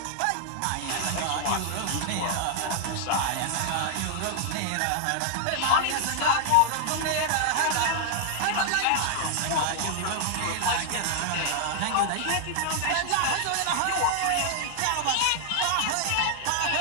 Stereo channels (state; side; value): different; both; correlation 0.00